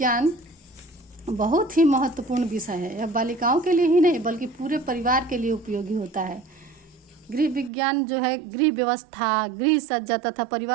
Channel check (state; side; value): drops out; left; at 7.7 s